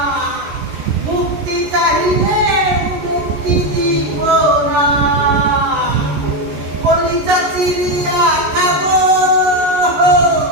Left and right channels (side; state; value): left; late; 14 ms